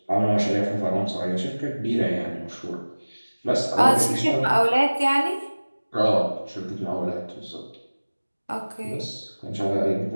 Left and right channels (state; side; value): inverted; both; correlation -1.00